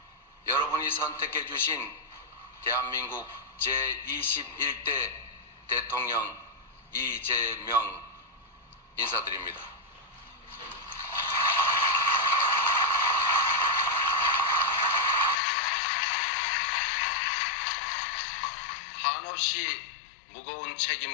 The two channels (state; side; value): drops out; right; at 15.4 s